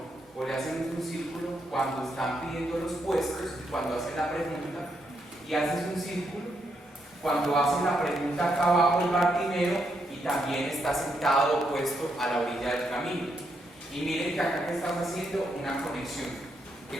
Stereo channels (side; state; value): both; normal; correlation 0.79